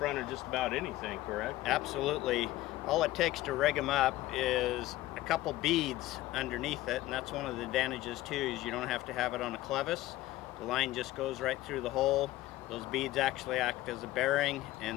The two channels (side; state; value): right; quieter; 16.5 dB